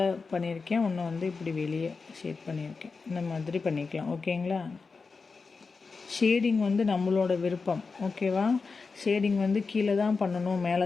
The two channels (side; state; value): right; quieter; 4.5 dB